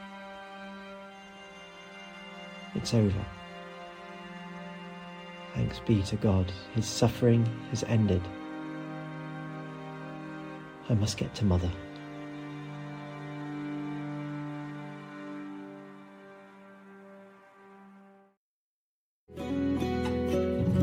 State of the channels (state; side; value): identical; both; correlation 1.00